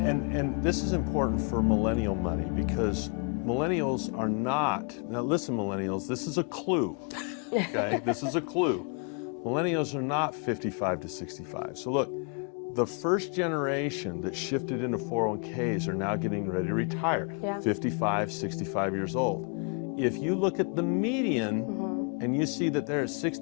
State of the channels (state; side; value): quieter; right; 38.4 dB